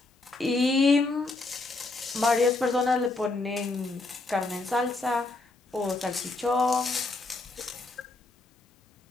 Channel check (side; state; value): right; quieter; 3.3 dB